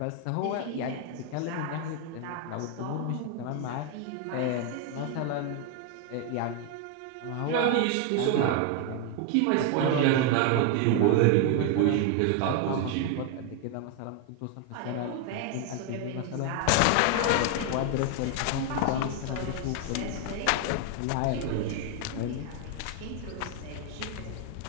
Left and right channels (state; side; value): different; both; correlation 0.01